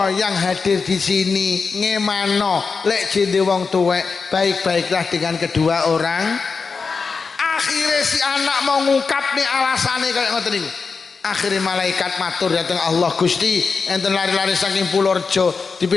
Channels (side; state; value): right; quieter; 4.9 dB